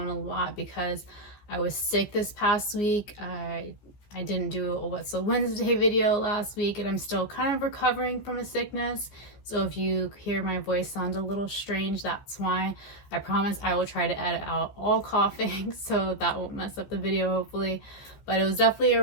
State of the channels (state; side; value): late; right; 15 ms